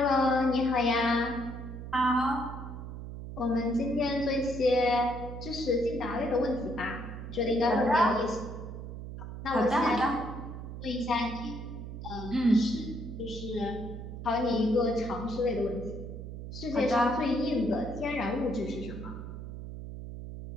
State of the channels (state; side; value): noise; right; hum, 9 dB below the sound